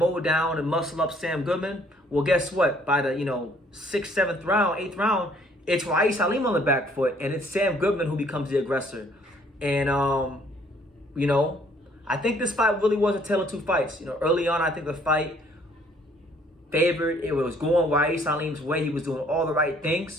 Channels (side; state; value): both; normal; correlation 0.62